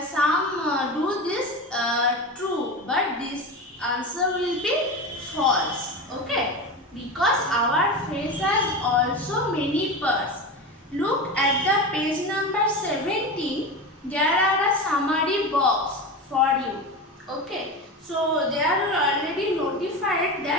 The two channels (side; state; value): both; normal; correlation 0.25